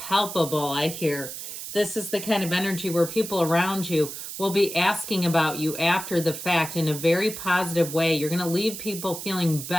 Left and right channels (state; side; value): noise; right; hiss, 8 dB below the sound